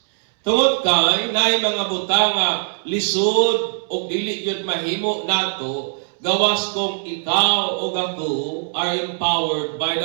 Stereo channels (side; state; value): left; silent; 65 dB below the other